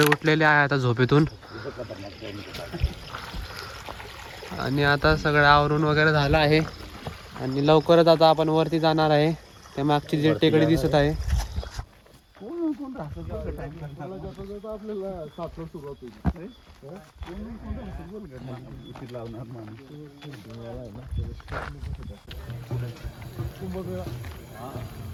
उठलेले आहे आता झोपेतून आणि आता सगळं आवरून वगैरे झालं आहे आणि लवकरच आता आपण वरती जाणार आहे. त्या मागची जी टेकडी दिसत आहे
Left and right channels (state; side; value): identical; both; correlation 1.00